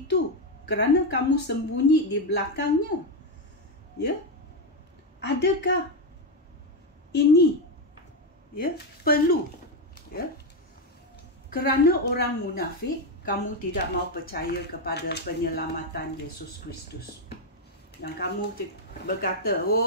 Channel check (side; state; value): both; normal; correlation 0.07